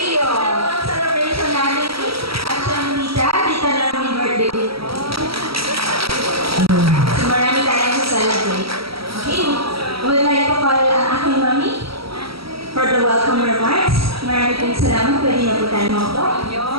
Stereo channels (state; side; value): late; left; 0.75 ms